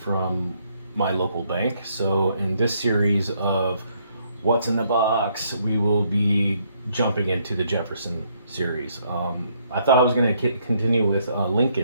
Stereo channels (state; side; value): inverted; both; correlation -0.71